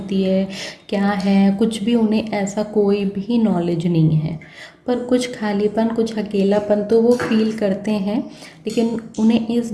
है, क्या है, कुछ भी उन्हें ऐसा कोई भी नॉलेज नहीं है। पर कुछ खालीपन, कुछ अकेलापन तो वो फील करते हैं, लेकिन उन्हें इस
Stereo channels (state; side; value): identical; both; correlation 1.00